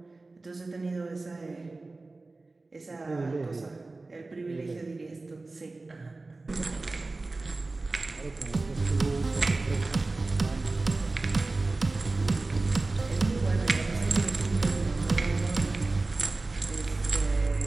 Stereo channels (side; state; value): left; quieter; 3.3 dB